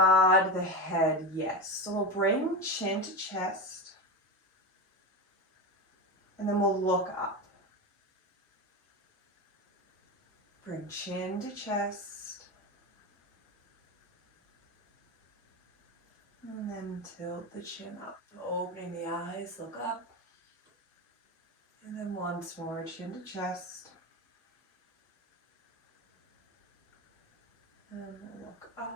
the head yes. So we'll bring chin to chest, and then we'll look up. Bring chin to chest. And then tilt the chin up, opening the eyes, look up. And then once more, chin to chest. And look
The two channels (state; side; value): normal; both; correlation 0.20